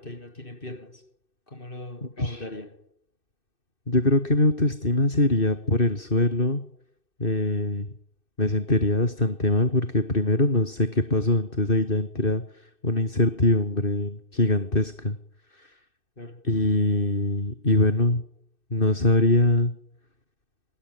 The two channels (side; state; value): right; late; 2.6 ms